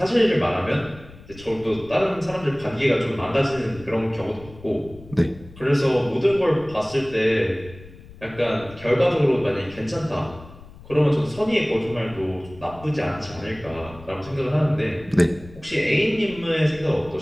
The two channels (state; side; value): noise; left; rumble, 19 dB below the sound